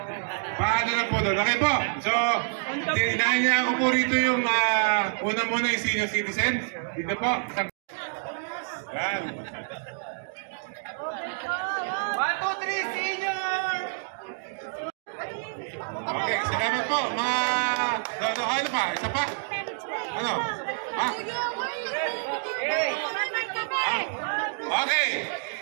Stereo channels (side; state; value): left; silent; digital silence